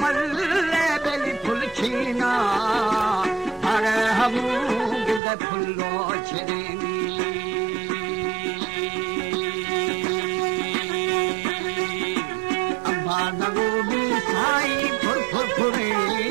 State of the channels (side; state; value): left; drops out; at 5.2 s